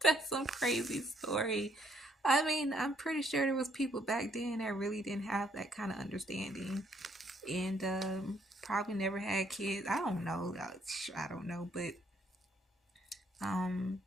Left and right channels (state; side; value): normal; both; correlation 0.69